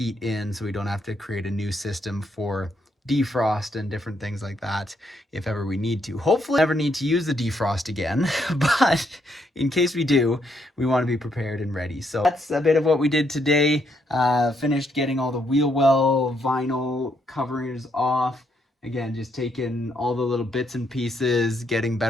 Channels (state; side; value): normal; both; correlation 0.75